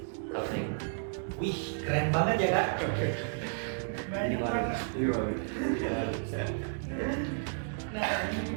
Kalau saya gitu. Wih, keren banget ya Kak. Jadi malu. Nah, ini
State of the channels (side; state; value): left; silent; digital silence